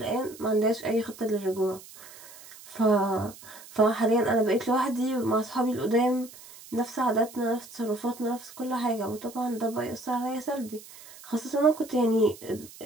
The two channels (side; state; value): right; noise; hiss, 19 dB below the sound